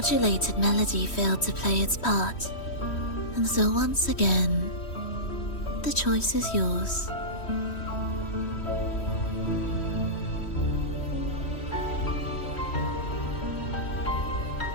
melody failed to play its part, and so once again, the choice is yours.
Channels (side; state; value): right; late; 3.1 ms